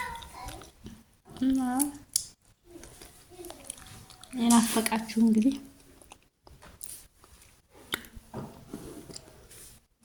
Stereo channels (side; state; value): both; identical; correlation 1.00